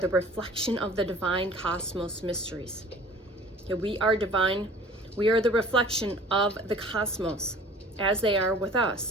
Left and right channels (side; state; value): both; normal; correlation 0.47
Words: reflection of the divine cosmos mysteries. Okay, we are divine. We are the reflection of the cosmos as they are with us.